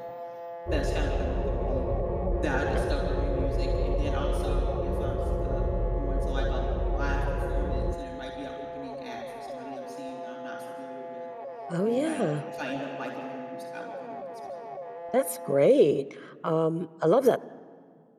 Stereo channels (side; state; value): both; identical; correlation 1.00